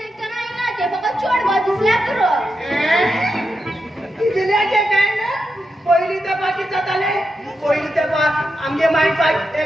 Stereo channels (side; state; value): both; normal; correlation 0.87